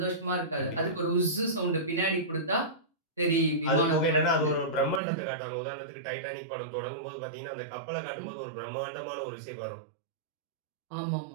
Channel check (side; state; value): left; drops out; at 5.0 s